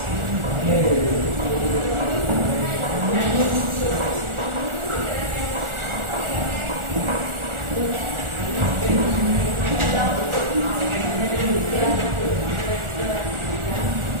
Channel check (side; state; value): left; late; 1.4 ms